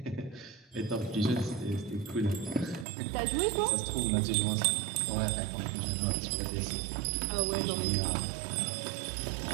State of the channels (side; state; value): left; drops out; at 2.9 s